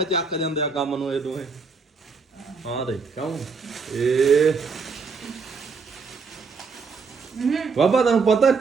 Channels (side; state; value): left; quieter; 4.9 dB